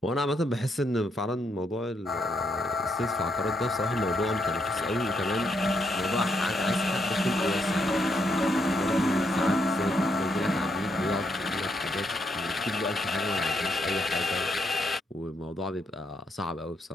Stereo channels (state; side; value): normal; both; correlation 0.77